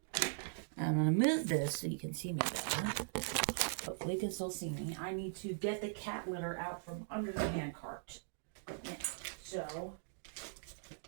I'm going to move this so you can see me better. Hopefully you can still see me. I need to get the cat litter out from under the hand cart. Yeah. So,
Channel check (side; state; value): left; silent; digital silence